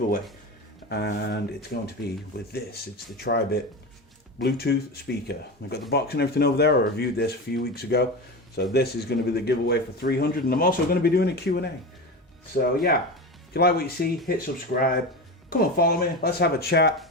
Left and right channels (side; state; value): both; normal; correlation 0.24